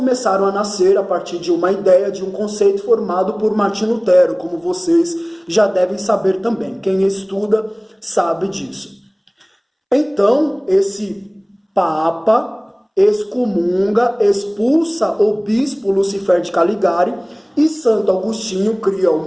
a nascer a partir de uma ideia, de um conceito formado por Martim Lutero, como vocês já devem saber também. Quem estuda sabe disso. Então, esse Papa excomunga, expulsa o bispo Lucifer de Caligari e Santo Agostinho cria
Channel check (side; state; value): both; identical; correlation 1.00